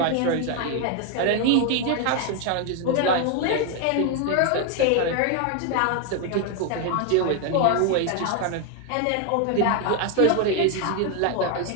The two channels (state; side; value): different; both; correlation 0.01